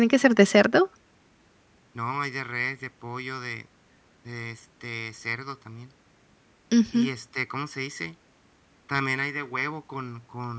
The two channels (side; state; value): both; identical; correlation 1.00